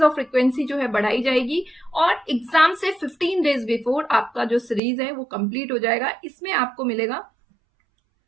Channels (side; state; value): left; drops out; at 4.8 s